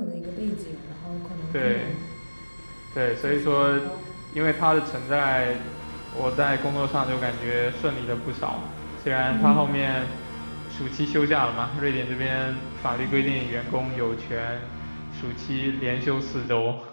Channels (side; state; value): both; inverted; correlation -1.00